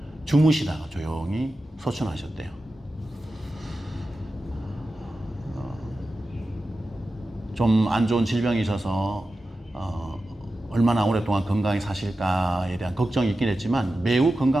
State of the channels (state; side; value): normal; both; correlation 0.93